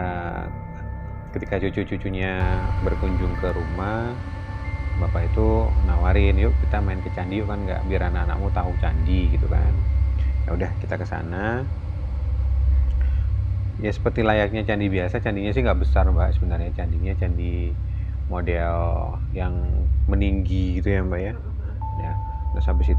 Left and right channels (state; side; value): identical; both; correlation 1.00